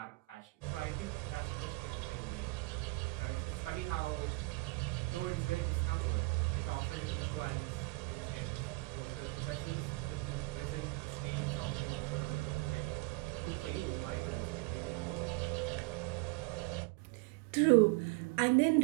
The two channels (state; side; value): quieter; left; 25.4 dB